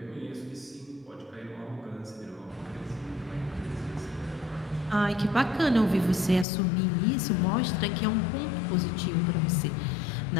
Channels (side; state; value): right; drops out; at 6.5 s